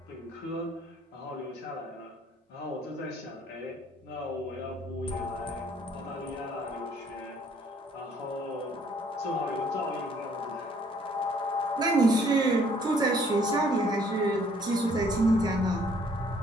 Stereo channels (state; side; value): normal; both; correlation 0.62